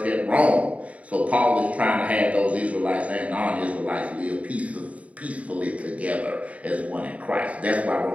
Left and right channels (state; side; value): late; left; 0.067 ms